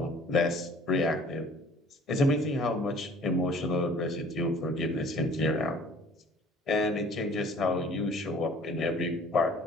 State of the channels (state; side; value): normal; both; correlation 0.52